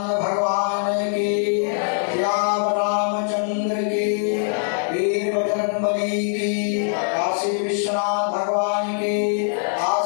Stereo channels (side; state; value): right; silent; 57 dB below the other